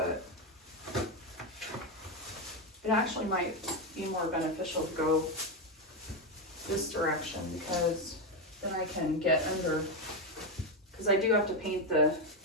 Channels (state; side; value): normal; both; correlation 0.09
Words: it actually might be more beneficial to go this direction because then I can get under, because I do have to paint the,